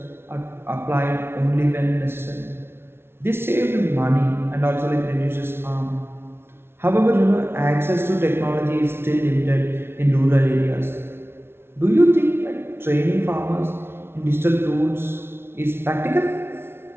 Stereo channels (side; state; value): left; late; 0.12 ms